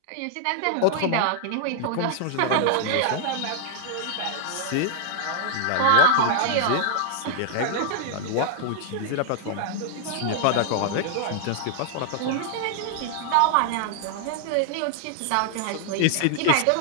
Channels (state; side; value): different; both; correlation -0.01